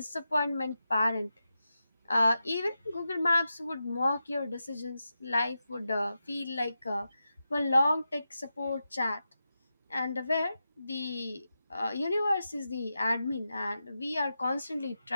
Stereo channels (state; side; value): inverted; both; correlation -0.90